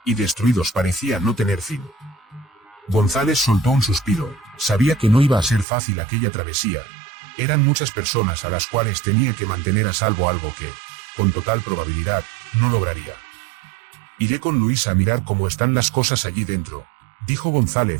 y destruidos parecía no tener fin. González soltó un suspiro, sabía que no iba a ser fácil aquella travesía. Eran muchas personas a las cuales tenía que mantener a salvo, algo que, con total probabilidad, no lograría. Iré con Luis a mirar cómo están las cosas allí dentro, dijo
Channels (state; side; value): drops out; left; at 5.7 s